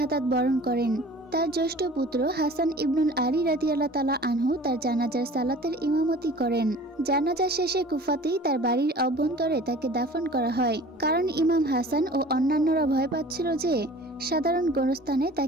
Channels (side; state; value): both; normal; correlation 0.44